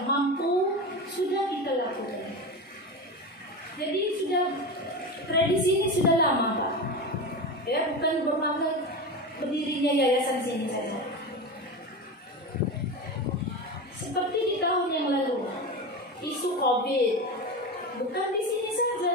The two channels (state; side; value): normal; both; correlation 0.23